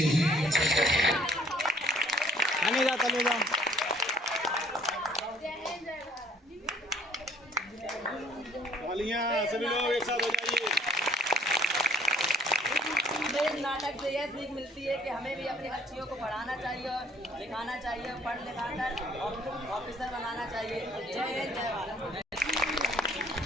सभी लोग एक साथ हो जाइए। इस नाटक से यह सीख मिलती है कि हमें भी अपनी बच्चियों को पढ़ाना चाहिए और लिखाना चाहिए, पढ़ लिखा कर ऑफिसर बनाना चाहिए। जय हिंद, जय भारत।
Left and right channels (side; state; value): both; normal; correlation 0.59